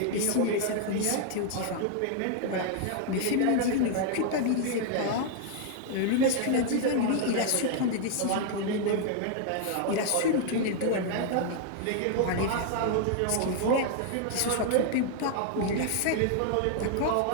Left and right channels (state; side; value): different; both; correlation 0.00